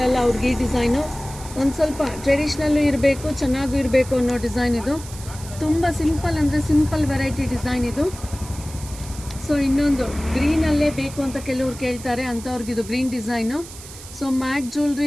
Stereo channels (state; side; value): noise; right; hiss, 15 dB below the sound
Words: ಅವ್ರಿಗೆ ಈ ಡಿಸೈನು. ಒಂದು ಸ್ವಲ್ಪ ಟ್ರೆಡಿಷ್ನಲ್ಲು ಇರಬೇಕು, ಚೆನ್ನಾಗೂ ಇರಬೇಕು ಅನ್ನೋ ಡಿಸೈನ್ ಇದು. ತುಂಬ ಸಿಂಪಲ್ ಅಂದರೆ ಸಿಂಪಲ್ ವೆರೈಟಿ ಡಿಸೈನ್ ಇದು. ಸೊ ಇನ್ನೊಂದು ಗ್ರೀನಲ್ಲೇ ಬೇಕು ಅಂತ ಕೆಲವ್ರು ಕೇಳ್ತಾರೆ, ಅಂಥವ್ರಿಗಿದು ಗ್ರೀನ್ ಡಿಸೈನು. ಸೊ ಮ್ಯಾಟ್